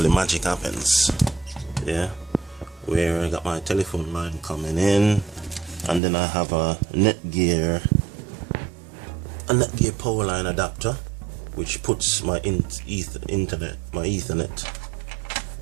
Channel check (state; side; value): drops out; left; at 6.0 s